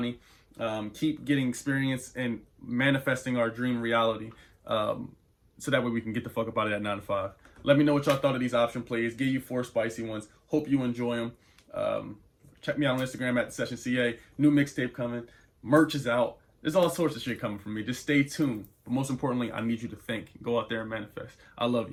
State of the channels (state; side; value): identical; both; correlation 1.00